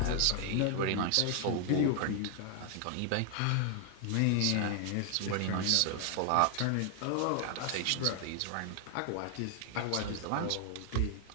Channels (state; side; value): different; both; correlation 0.00